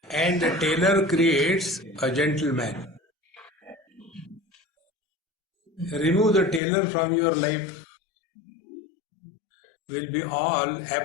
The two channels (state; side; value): drops out; right; at 6.6 s